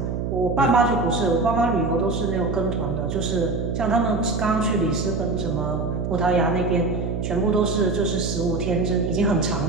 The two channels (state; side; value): noise; right; hum, 2 dB below the sound